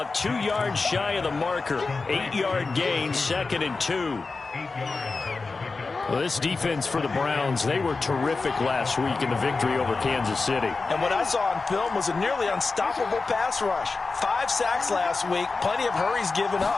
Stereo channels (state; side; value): quieter; right; 4.0 dB